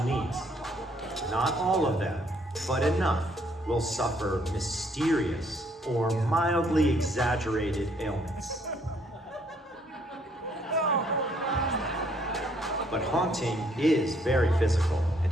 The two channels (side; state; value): both; normal; correlation 0.67